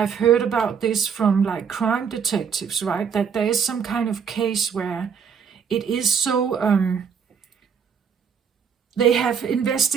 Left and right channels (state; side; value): quieter; left; 6.8 dB